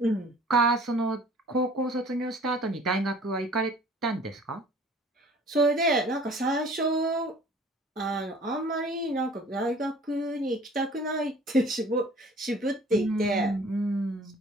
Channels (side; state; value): both; normal; correlation 0.50